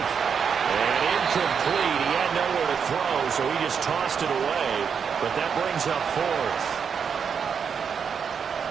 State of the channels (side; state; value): left; quieter; 6.8 dB